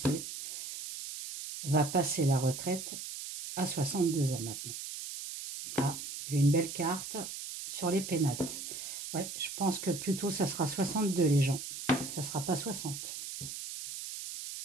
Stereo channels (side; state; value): right; noise; hiss, 8 dB below the sound